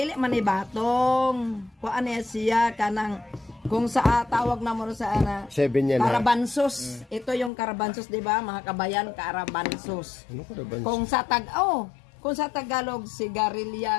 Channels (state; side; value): drops out; right; at 7.5 s